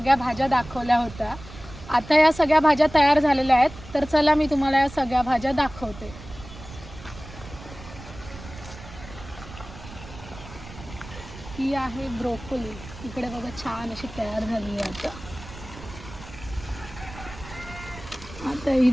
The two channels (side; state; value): right; noise; rumble, 15 dB below the sound